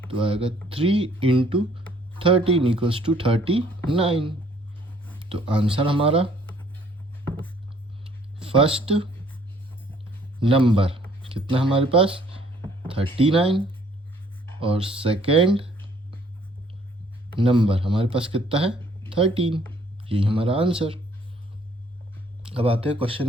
तो आएगा 3 इंटू 13 इक्वल्स टू 39। तो आंसर हमारा फर्स्ट नंबर कितना हमारे पास? 39, और सेकेंड नंबर हमारे पास कितना है? 13। यही हमारा आंसर। अब आते हैं क्वेश्चन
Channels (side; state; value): both; normal; correlation 0.62